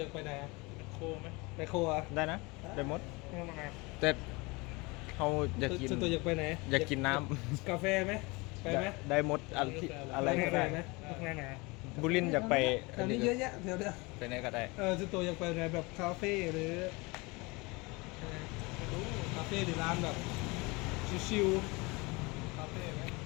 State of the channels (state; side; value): quieter; right; 25.7 dB